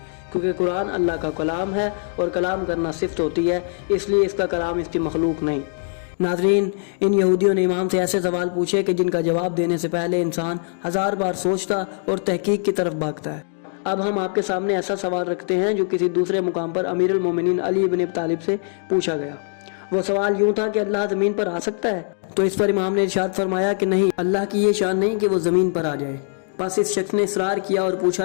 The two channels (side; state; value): right; silent; 63 dB below the other